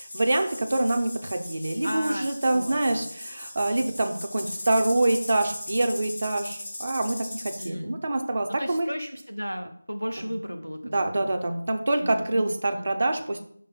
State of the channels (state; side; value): inverted; both; correlation -0.96